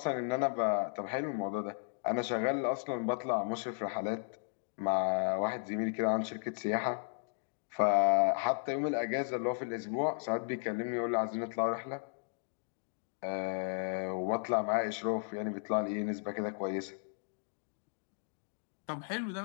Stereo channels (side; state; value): right; silent; digital silence